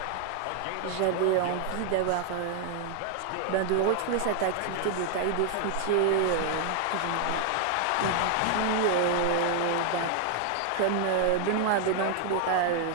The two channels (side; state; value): both; different; correlation 0.00